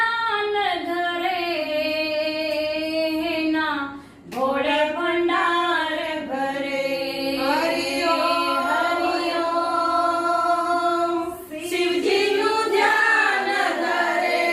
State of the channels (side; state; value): both; identical; correlation 1.00